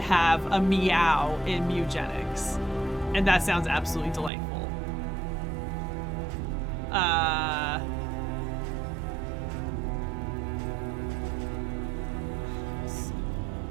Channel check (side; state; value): left; drops out; at 4.3 s